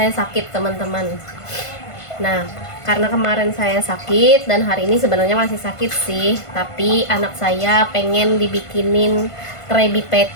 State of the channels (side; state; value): right; late; 1.5 ms